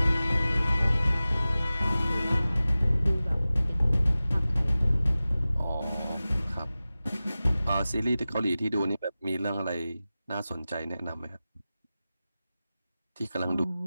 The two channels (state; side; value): inverted; both; correlation -0.96